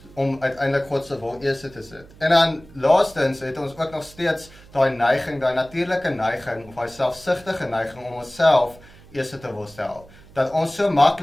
om uiteindelik God se wil eerste te sit. En dan laastens het ons ook nog steeds daai neiging, daai natuurlike neiging, of daai selfsugtige neiging om onsself eerste te wil stel. Dat ons so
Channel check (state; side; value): noise; right; hum, 23 dB below the sound